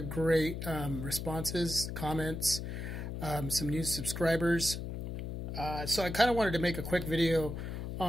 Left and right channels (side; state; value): left; noise; hum, 5 dB below the sound